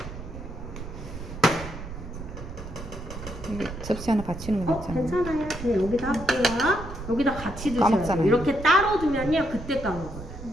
접시 하나 받치는 거 맞잖아요. 괜찮아요. 그냥 여기다 할게요. 여기다 같이 두셔야 돼요. 까먹잖아요. 이렇게 따로 두면요. 그때 까먹어요.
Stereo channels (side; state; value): right; noise; rumble, 10 dB below the sound